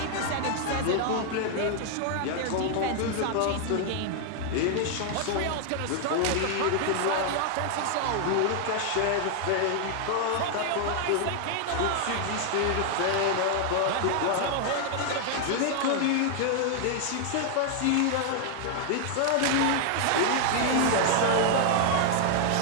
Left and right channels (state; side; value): different; both; correlation 0.00